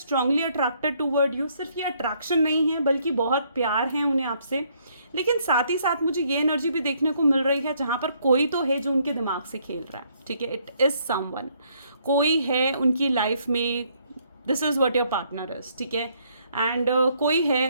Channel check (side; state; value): both; inverted; correlation -0.69